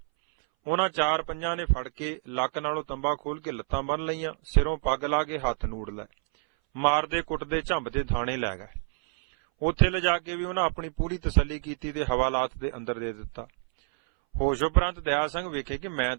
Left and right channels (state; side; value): silent; left; 59 dB below the other